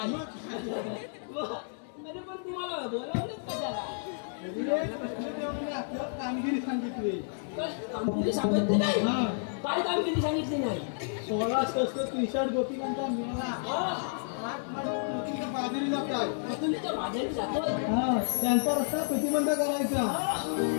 अरे पण तुम्हाला बोलावलं कशाला कामगिरी सांगितली कामगिरी सांगितली नाही काय कामगिरी सांगितली नाही 16 संस्कृत टी-शर्ट गोपिकांचा मिळाला बाजारी जातात तुम्ही बाजारी जातोय त्यांचा रस्ता प्रतिबंध करायचा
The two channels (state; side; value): silent; right; digital silence